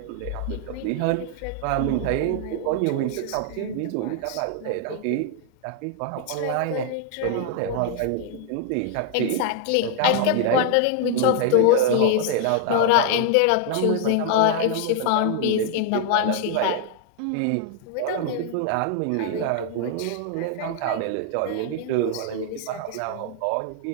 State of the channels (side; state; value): both; different; correlation 0.00